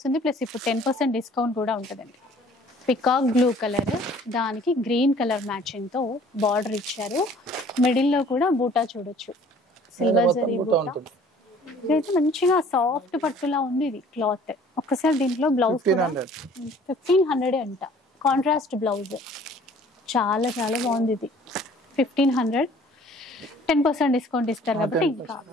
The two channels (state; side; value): normal; both; correlation 0.53